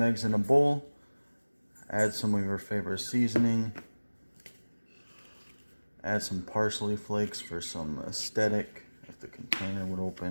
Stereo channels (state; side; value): inverted; both; correlation -1.00